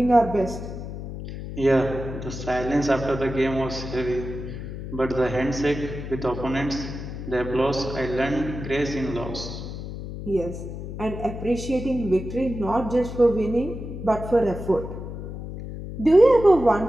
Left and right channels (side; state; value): left; noise; hum, 8 dB below the sound